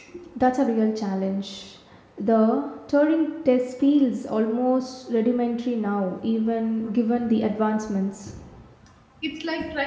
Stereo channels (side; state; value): both; identical; correlation 1.00